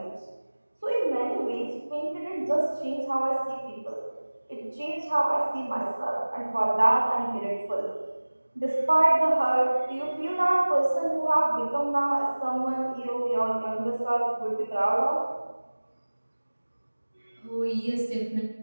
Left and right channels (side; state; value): both; inverted; correlation -1.00